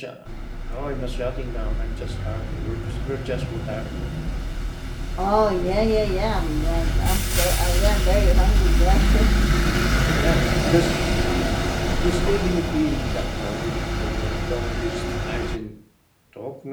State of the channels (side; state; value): both; identical; correlation 1.00